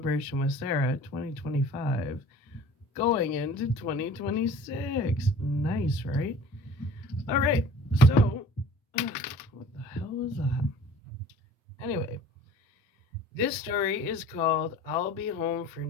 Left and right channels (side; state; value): both; normal; correlation 0.45